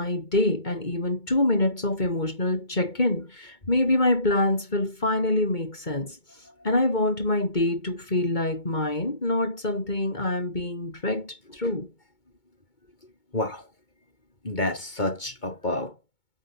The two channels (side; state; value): right; late; 2.2 ms